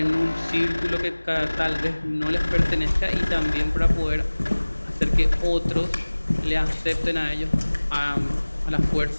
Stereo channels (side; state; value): both; inverted; correlation -1.00